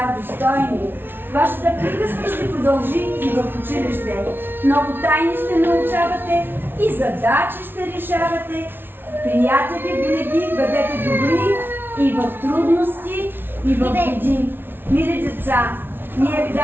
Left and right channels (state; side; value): late; left; 0.10 ms